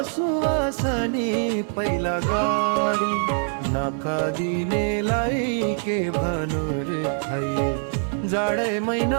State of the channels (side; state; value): left; silent; 63 dB below the other